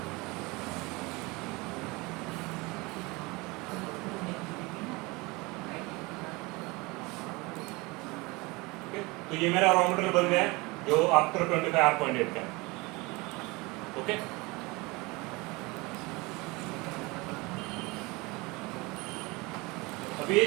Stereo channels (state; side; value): quieter; left; 24.6 dB